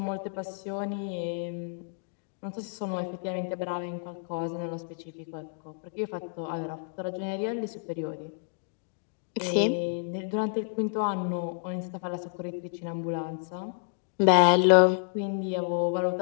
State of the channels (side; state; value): right; silent; digital silence